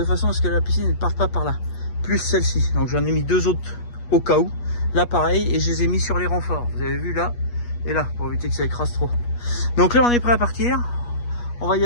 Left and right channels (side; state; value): right; late; 8.3 ms